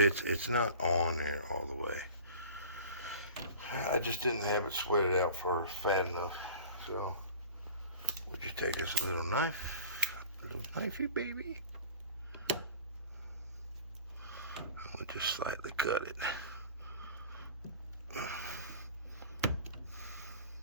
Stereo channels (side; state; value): both; inverted; correlation -0.41